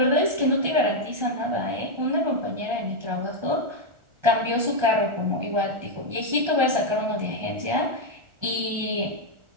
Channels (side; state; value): left; late; 1.3 ms